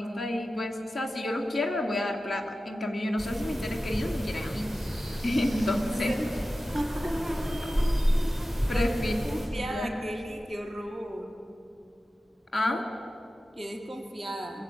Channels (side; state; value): both; normal; correlation 0.94